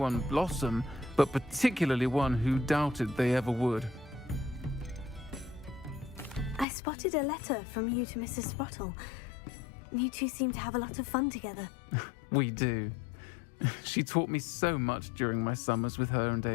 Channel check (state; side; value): drops out; right; at 6.7 s